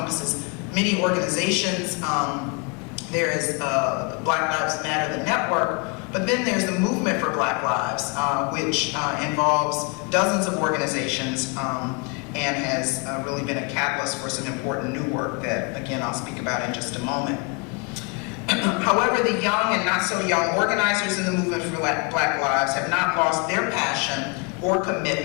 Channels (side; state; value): right; quieter; 31.8 dB